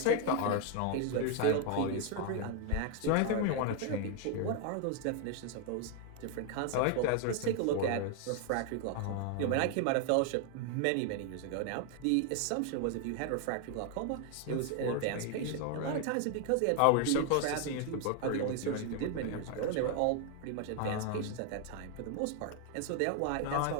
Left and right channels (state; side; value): different; both; correlation 0.00